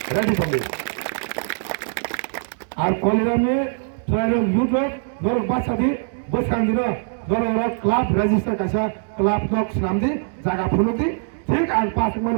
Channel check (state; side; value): silent; left; 64 dB below the other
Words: रेडी दंगे आर कलेरामनि ट्राइल युथ नर बासादि बसांदिनो नर क्लाब रेजिस्टार कासा क्लाब दक नामदि जागा फुलुदि ঠিক আর 5 মাস